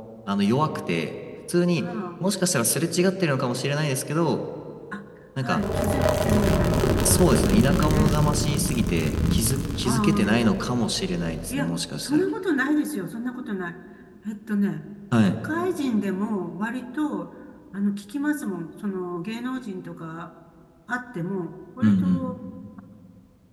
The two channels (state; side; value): identical; both; correlation 1.00